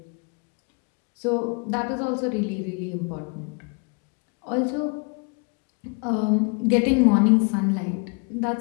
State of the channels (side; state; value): right; quieter; 35.8 dB